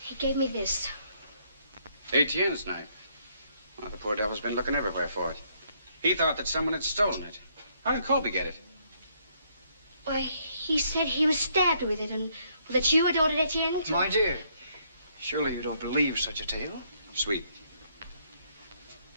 gave me this. Etienne's knife. Well, the poor devil's been looking everywhere for it. He thought that someone had stolen it. How did Colby get it? Why, he said he was stabbed with it and that you had ordered Etienne to... My dear, surely you don't believe such a tale? Sweet.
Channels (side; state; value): both; inverted; correlation -0.70